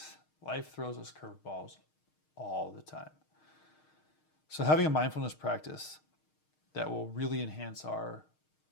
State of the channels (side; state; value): right; late; 6.5 ms